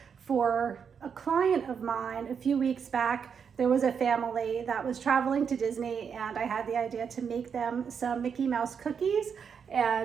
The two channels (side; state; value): left; quieter; 6.8 dB